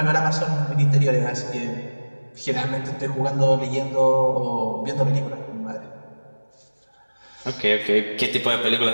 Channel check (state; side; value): inverted; both; correlation -1.00